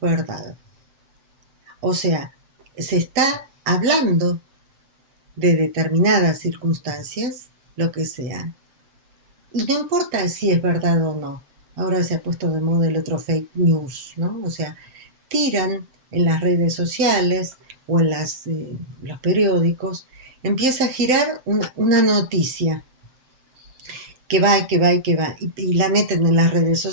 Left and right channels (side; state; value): left; late; 7.6 ms